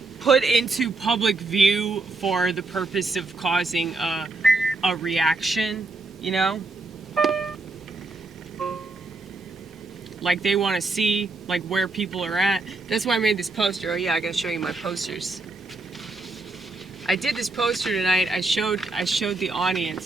put into public view for the purpose of causing a reaction, you know? Like they want to see like where people are at. That's why I made this poster. Oh yeah, I gotta show you my posters. I did this poster tonight. I showed the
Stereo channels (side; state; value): left; quieter; 3.3 dB